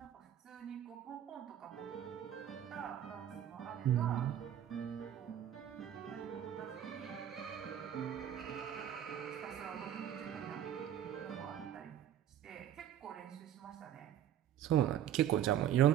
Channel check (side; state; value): left; quieter; 10.6 dB